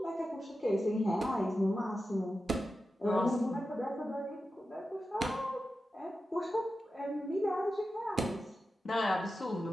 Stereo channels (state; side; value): normal; both; correlation 0.92